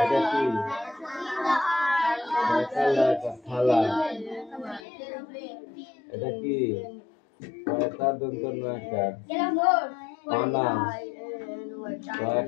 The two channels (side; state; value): right; drops out; at 4.9 s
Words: কি মাকালা কাঠালা এটা কি কয়টা দন্ত নয়কার পানা